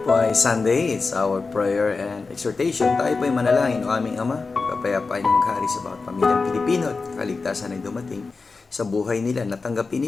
ay Sunday. It's our prayer and exhortation. Tayo po ay manalangin o aming Ama. Kapayapaan niyo maghari sa bawat pamilyang Pilipino at kaligtasan ay dumating sa buhay nila.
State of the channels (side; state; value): right; quieter; 4.2 dB